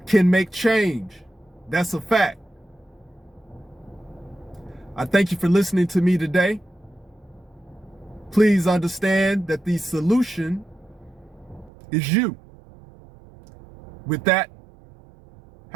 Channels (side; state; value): left; drops out; at 11.7 s